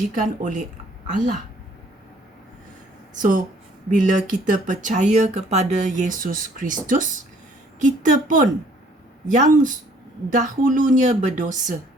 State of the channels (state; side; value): normal; both; correlation 0.60